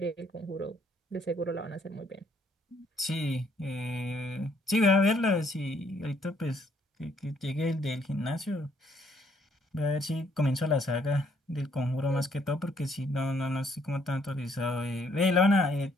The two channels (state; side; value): normal; both; correlation 0.67